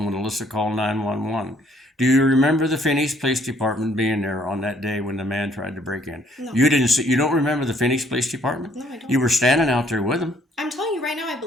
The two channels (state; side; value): normal; both; correlation 0.64